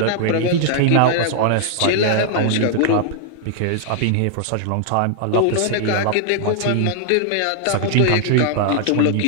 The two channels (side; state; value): both; different; correlation -0.01